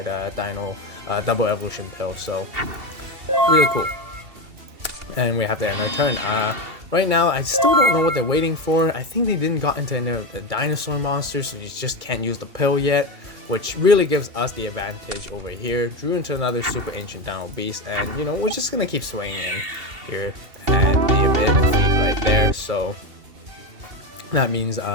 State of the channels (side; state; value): left; late; 2.3 ms